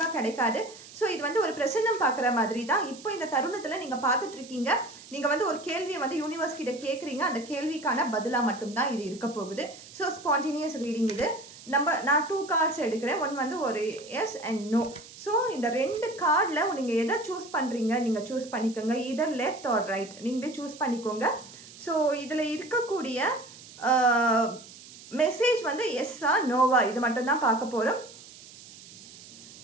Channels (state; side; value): noise; right; hiss, 18 dB below the sound